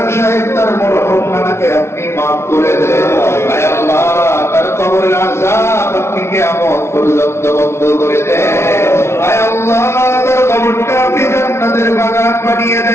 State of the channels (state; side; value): late; right; 0.13 ms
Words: সাহেব তার মরহুম নানাকে আপনি মাফ করে দেন। আয় আল্লাহ, তার কবরের আযাব আপনি কিয়ামত পর্যন্ত বন্ধ করে দেন। আয় আল্লাহ, তার কবরটা আপনি জান্নাতের বাগান বানিয়ে